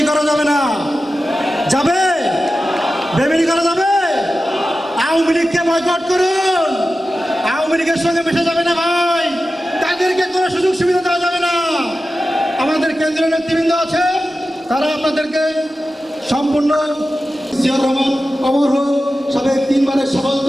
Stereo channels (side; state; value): both; normal; correlation 0.93